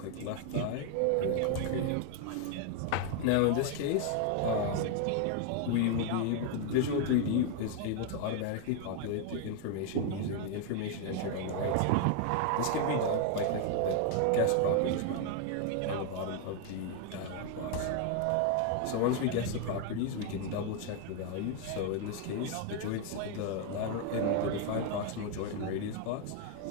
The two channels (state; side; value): different; both; correlation 0.00